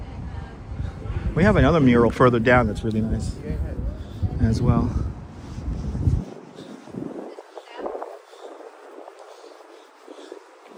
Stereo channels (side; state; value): both; identical; correlation 1.00